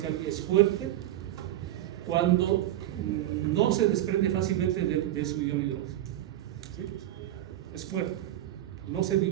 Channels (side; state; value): left; quieter; 13.5 dB